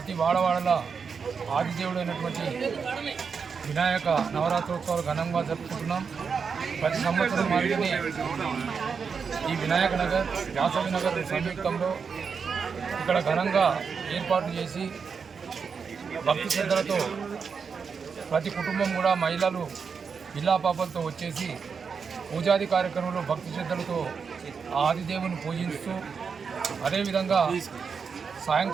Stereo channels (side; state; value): left; quieter; 5.8 dB